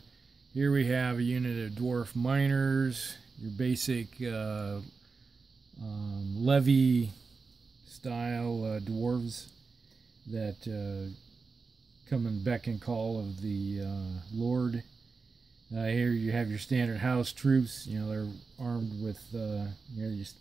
Here we have a unit of dwarf miners, your basic levy style dwarves that come and beck and call of the Lord. Here you have your standard house troops. You know, they're armed with just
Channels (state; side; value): quieter; left; 4.5 dB